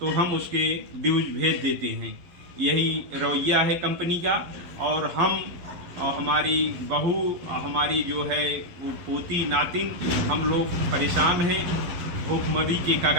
हम उसके ड्यूज भेज देते हैं। यही रवैया है कंपनी का। और हम और हमारी बहू, हमारी जो है वो पोती नातिन, हम लोग परेशान हैं, भूखमरी के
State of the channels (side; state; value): left; late; 11 ms